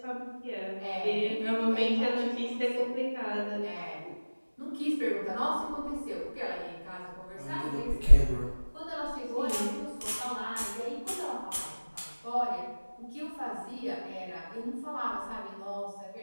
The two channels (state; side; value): inverted; both; correlation -1.00